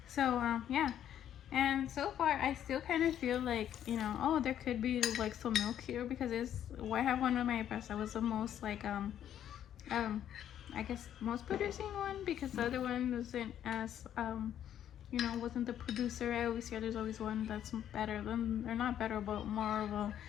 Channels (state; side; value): quieter; right; 10.4 dB